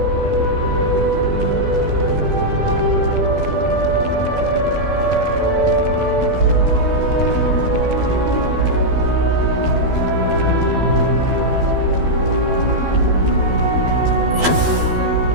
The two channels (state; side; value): late; left; 12 ms